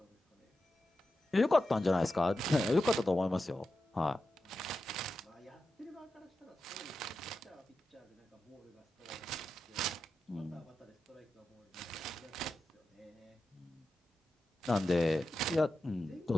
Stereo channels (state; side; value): normal; both; correlation 0.90